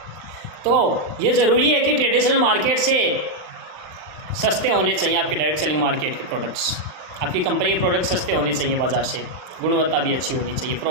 तो ये ज़रूरी है कि ट्रेडिशनल मार्केट से सस्ते होने चाहिए आपके डायरेक्ट सेलिंग मार्केट के प्रोडक्ट्स। आपकी कंपनी के प्रोडक्ट्स सस्ते होने चाहिए बाज़ार से, गुणवत्ता भी अच्छी होनी चाहिए,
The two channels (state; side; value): late; left; 39 ms